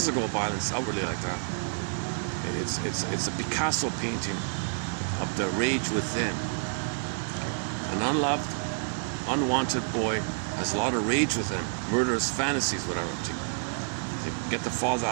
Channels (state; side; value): silent; left; digital silence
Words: violence outwardly like that. It's a Picasso painting of the rage within. An unloved, unwanted boy has a lot of rage within, murderous fantasies, whatever, to get the father